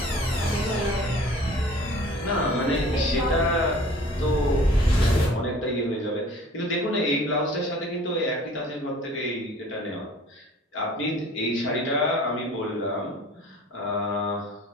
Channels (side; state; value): both; normal; correlation 0.47